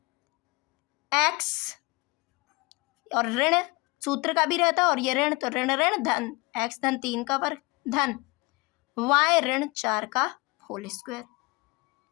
x और ऋण सूत्र का भी रहता है और ये ऋण, तो ऋण ऋण धन x धन 3 का वर्ग धन y ऋण 4 का होल स्क्वायर।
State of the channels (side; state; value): right; quieter; 25.9 dB